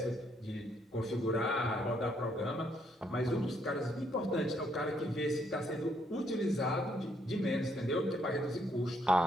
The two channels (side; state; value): both; normal; correlation 0.72